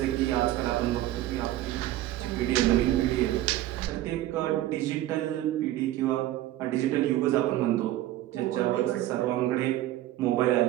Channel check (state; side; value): quieter; left; 14.6 dB